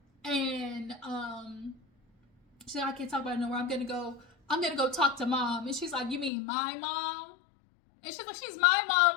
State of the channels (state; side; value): drops out; right; at 6.3 s